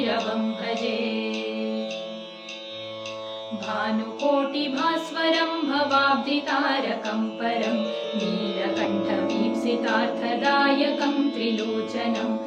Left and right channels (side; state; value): both; identical; correlation 1.00